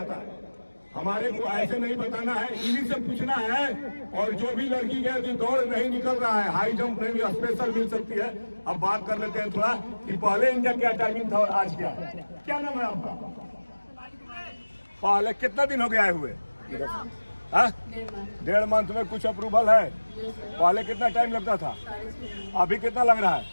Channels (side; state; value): both; inverted; correlation -1.00